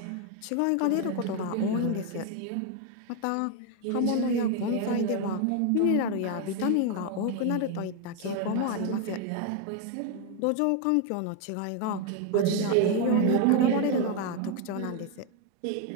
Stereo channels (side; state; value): both; different; correlation 0.01